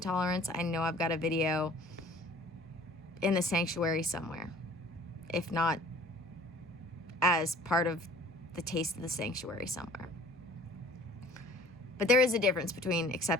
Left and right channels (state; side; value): normal; both; correlation 0.50